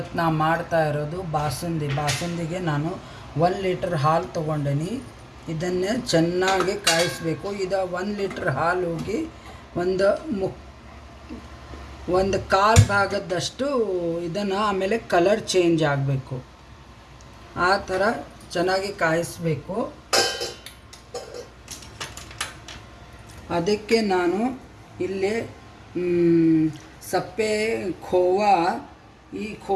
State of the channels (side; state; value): both; identical; correlation 1.00